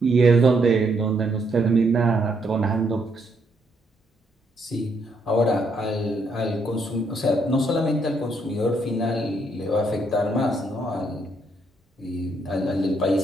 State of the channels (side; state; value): both; normal; correlation 0.74